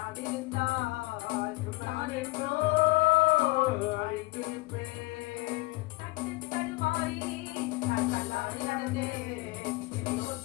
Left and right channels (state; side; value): quieter; right; 23.3 dB